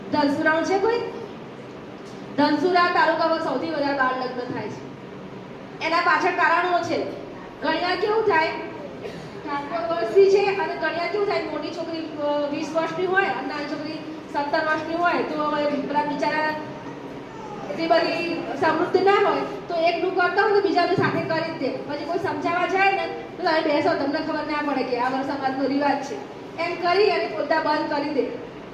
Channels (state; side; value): identical; both; correlation 1.00